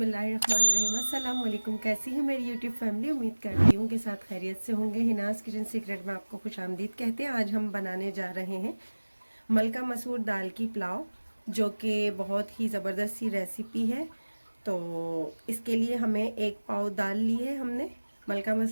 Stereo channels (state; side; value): inverted; both; correlation -1.00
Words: अस्सलाम वालेकुम। कैसी है मेरी यूट्यूब फैमिली? उम्मीद करती हूँ कि साथ खैरियत से होंगे। हिनाज़ किचन सीक्रेट में आपको खुशामदीद कहते हैं। आज हम बनाने जा रहे हैं मलका मसूर दाल की पुलाव, जो कि बहुत ही ज़बरदस्त सी रेसिपी है। तो इसके लिए हमें 1 पाव दाल ली है हमने मलका